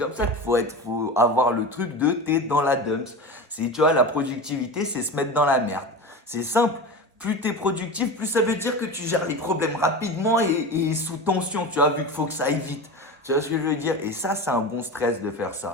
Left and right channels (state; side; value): normal; both; correlation 0.27